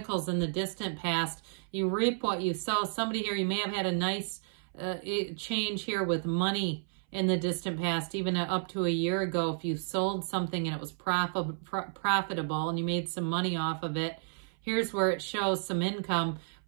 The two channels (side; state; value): left; silent; 57 dB below the other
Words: in the distant past, you reap what you sow. Somebody here, you may have had a nice change here with money in the distant past, even up to a year ago. If you sold something and it was profitable and you made some money off of it, here's where it shows some income.